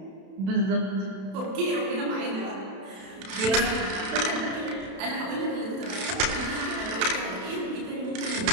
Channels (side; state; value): left; late; 32 ms